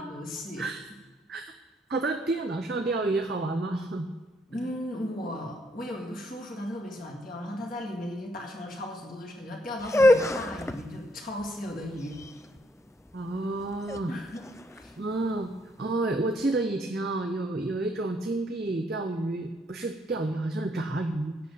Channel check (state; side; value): normal; both; correlation 0.71